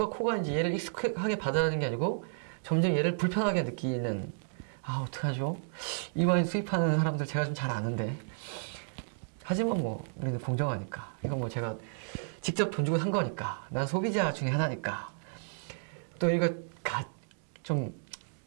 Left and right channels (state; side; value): silent; left; digital silence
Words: 코가 이제 얘를 익숙하게 받아들이는 게 아니고 점점 얘를 불편하게 느끼는, 어떡하죠? 이 와인 수입하는 사람들 제가 좀 잘 아는데, 하지만 뭐 우리는 공정하니까, 이건 뭐 제가 직접 돈 주고 산 거니까, 난 소비자 중에 하나니까, 또 이거 좀